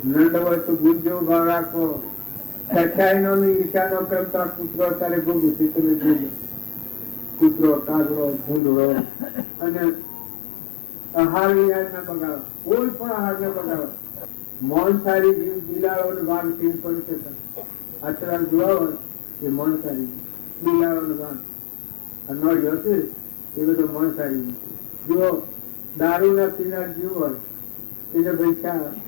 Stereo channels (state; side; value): drops out; right; at 8.6 s